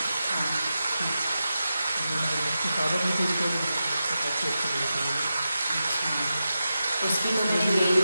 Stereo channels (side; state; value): both; inverted; correlation -0.90